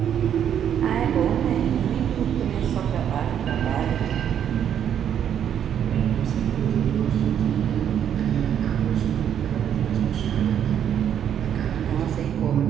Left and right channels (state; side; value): quieter; left; 9.3 dB